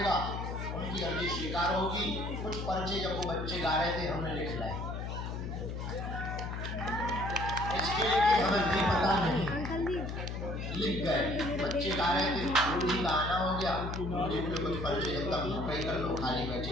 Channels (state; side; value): noise; left; hum, 5 dB below the sound